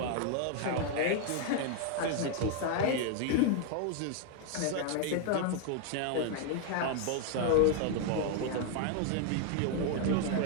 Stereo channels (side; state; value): both; different; correlation 0.00